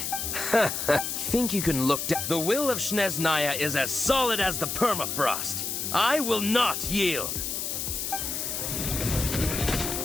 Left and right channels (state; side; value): noise; left; hiss, 3 dB below the sound